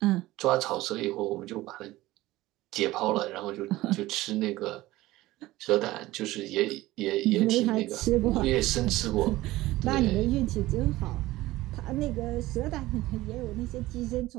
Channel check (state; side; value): quieter; left; 17.5 dB